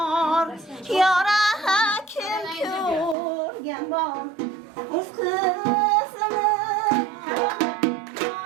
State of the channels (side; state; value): left; drops out; at 3.2 s